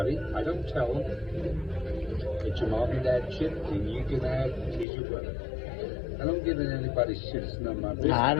I don't tell them. It's your mom and dad shit, and you can have, he's your brother. I don't get in anybody's shit. It's none of my business. I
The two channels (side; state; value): right; drops out; at 4.9 s